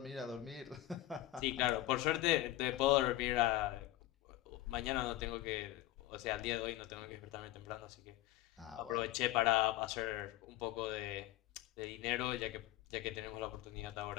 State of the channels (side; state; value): right; quieter; 15.4 dB